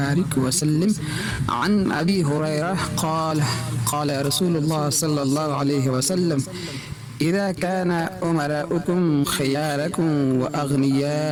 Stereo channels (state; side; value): identical; both; correlation 1.00